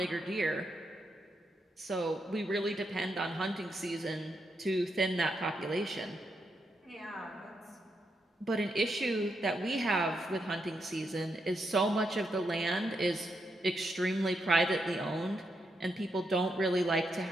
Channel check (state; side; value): normal; both; correlation 0.82